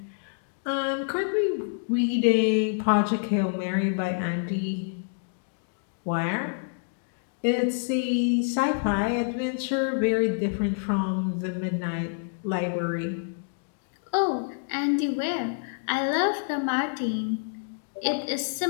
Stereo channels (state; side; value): silent; right; digital silence